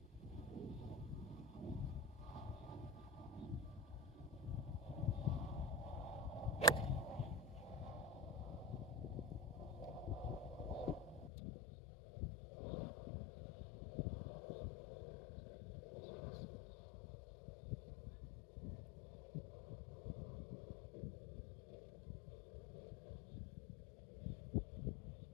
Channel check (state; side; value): drops out; right; at 11.3 s